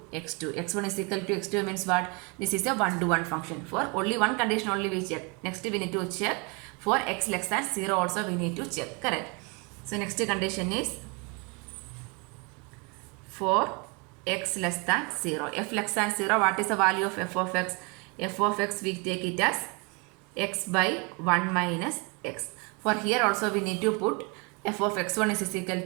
x2. x1 is equal to x2 means what? This is a 1 to 1 function. For only one condition only we check. Next we need to check for x less than 0 also we need to check. Correct. So next condition is for x less than 0. F less than 0, what is the value of f of x? F of x we take it as x by 1 minus x. For here also we need to put f of x1 is equal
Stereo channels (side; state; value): left; quieter; 31.4 dB